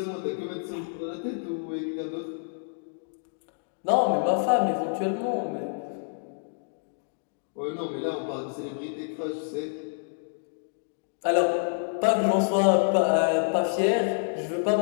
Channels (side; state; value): right; silent; digital silence